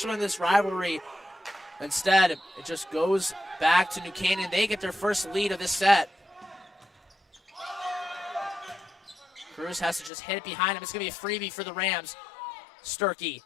in this rivalry. Instead, it just goes back to New Canaan. They get their first lead of this set. Cruz has to just hit it behind him. It's going to be a freebie for the Rams. Sturkey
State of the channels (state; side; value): drops out; right; at 10.1 s